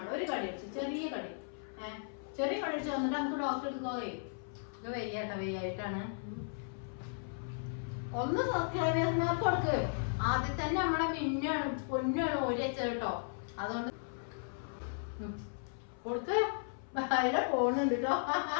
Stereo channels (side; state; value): right; silent; 54 dB below the other